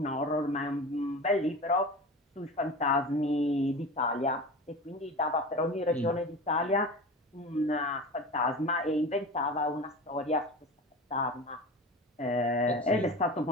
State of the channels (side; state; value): both; normal; correlation 0.31